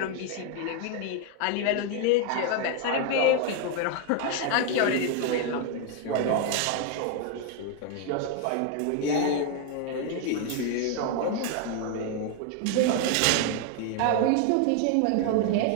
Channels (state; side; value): different; both; correlation 0.01